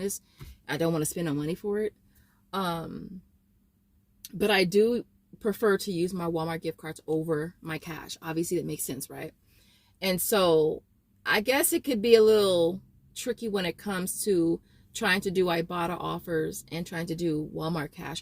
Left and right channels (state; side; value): identical; both; correlation 1.00